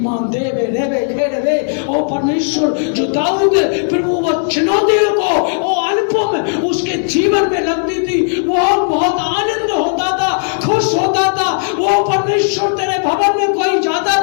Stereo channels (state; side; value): silent; right; digital silence